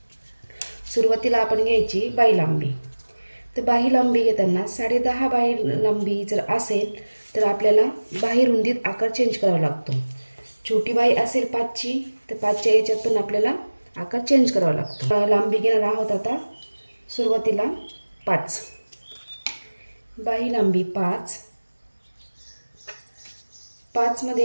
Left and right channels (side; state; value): both; inverted; correlation -1.00